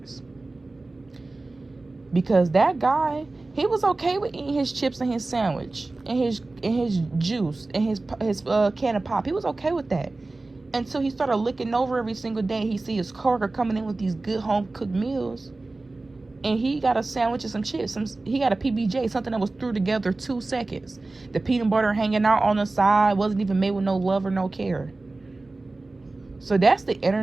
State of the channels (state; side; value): quieter; left; 3.2 dB